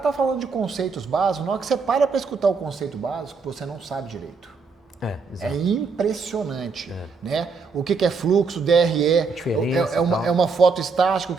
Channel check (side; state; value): left; quieter; 4.7 dB